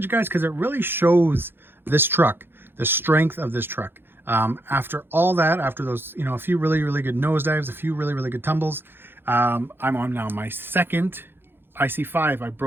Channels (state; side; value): late; left; 0.10 ms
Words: guys, because it really shows this truck, the strength of this truck. After all that, after those, you know, a few really, really good nosedives, a few really, really good tumbles, I'm on now my second IC5. I